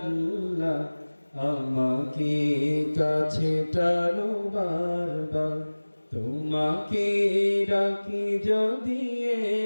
আমাকে কাছে টানো বারবার। তোমাকে ডাকি যদি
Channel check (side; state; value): both; inverted; correlation -1.00